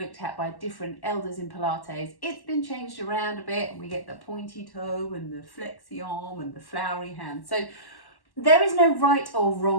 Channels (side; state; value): right; late; 1.1 ms